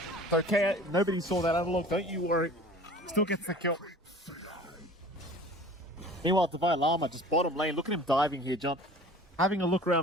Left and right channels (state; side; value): normal; both; correlation 0.44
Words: It's okay, nobody saw that analog, don't you worry. Still gets the kill. Meanwhile, Davai Lama just bottom lane. Look at him diving here, John. Having a look